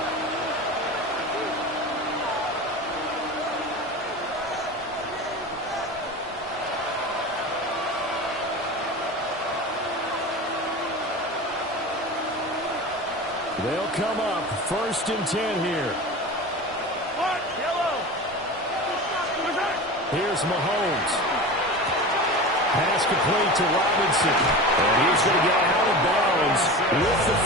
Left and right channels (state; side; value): normal; both; correlation 0.31